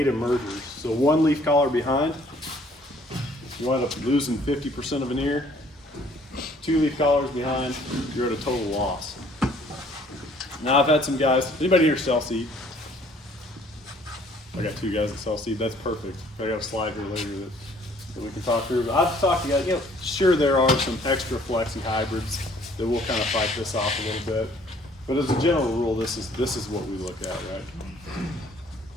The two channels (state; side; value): normal; both; correlation 0.59